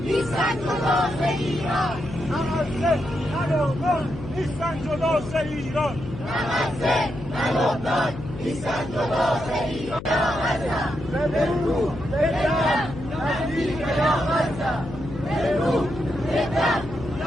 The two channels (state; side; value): noise; left; hum, 11 dB below the sound